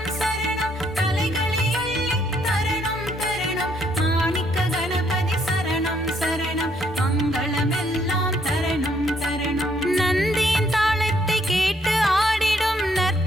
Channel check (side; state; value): both; normal; correlation 0.70